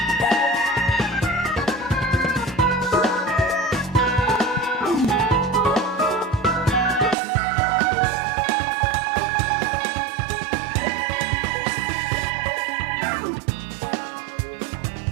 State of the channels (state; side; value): drops out; left; at 7.2 s